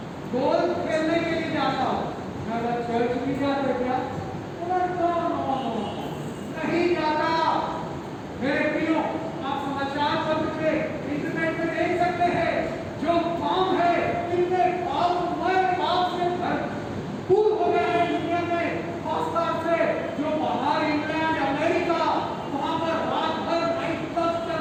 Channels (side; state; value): both; identical; correlation 1.00